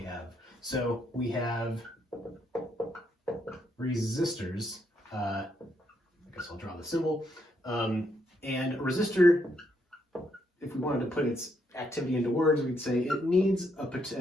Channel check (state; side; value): normal; both; correlation 0.76